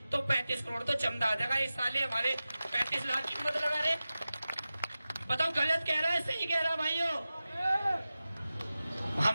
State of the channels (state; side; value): inverted; both; correlation -0.95